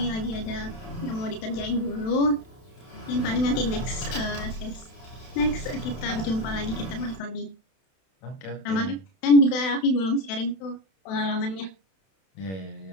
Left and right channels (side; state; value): right; late; 31 ms